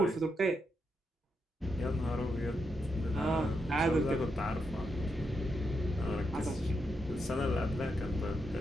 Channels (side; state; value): both; normal; correlation 0.83